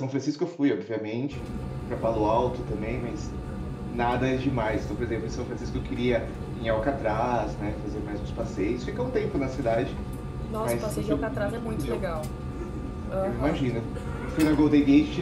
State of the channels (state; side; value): identical; both; correlation 1.00